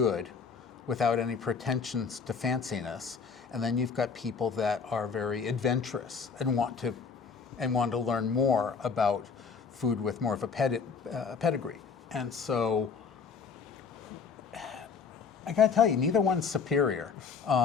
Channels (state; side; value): quieter; right; 5.7 dB